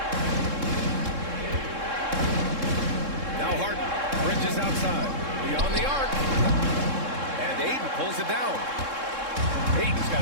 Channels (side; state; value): left; late; 3.7 ms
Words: Now Harden. Bridges outside. Beyond the arc. And Ayton pulls it down. Ayton's